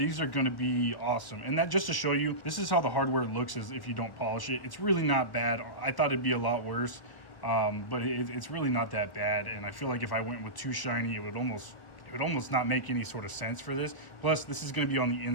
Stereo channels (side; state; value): right; late; 1.1 ms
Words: are going to be awesome. And that, just to show you, this is how the hardware looks as if you don't polish it. It's really not bad. I thought it'd be a lot worse. But it's really not that bad, and I feel like if I went with too shiny, it would almost not make any sort of sense for this. Plus, this is going to be on the